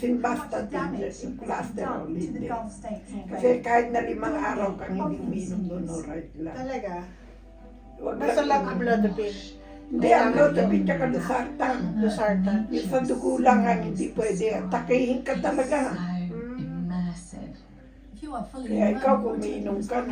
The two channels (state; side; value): identical; both; correlation 1.00